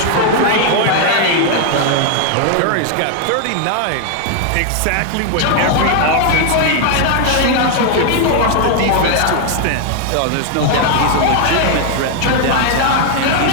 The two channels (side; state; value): both; different; correlation 0.00